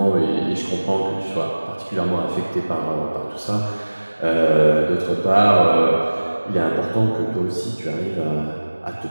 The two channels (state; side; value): inverted; both; correlation -1.00